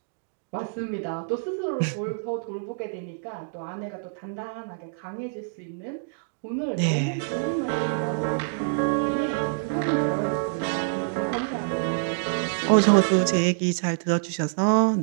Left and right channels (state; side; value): silent; left; digital silence